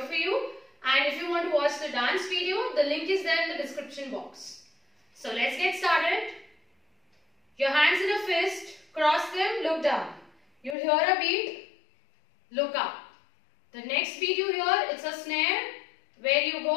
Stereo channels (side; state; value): right; drops out; at 10.8 s